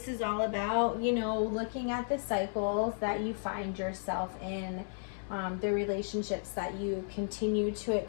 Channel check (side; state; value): right; silent; 55 dB below the other